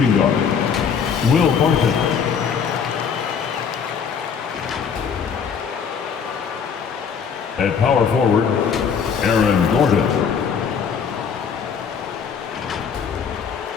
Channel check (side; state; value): right; quieter; 6.7 dB